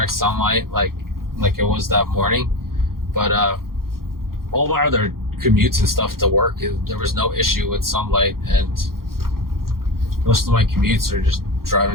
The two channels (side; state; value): left; late; 0.92 ms